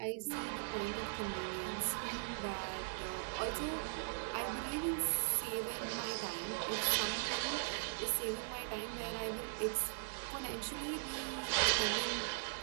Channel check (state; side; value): silent; left; digital silence